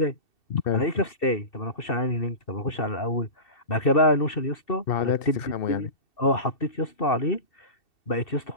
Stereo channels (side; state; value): right; late; 2.7 ms